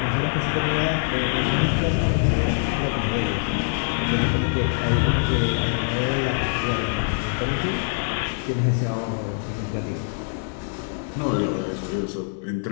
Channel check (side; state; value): right; silent; 60 dB below the other